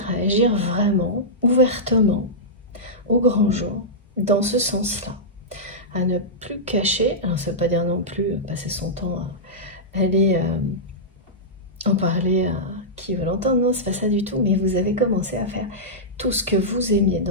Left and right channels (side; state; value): both; normal; correlation -0.12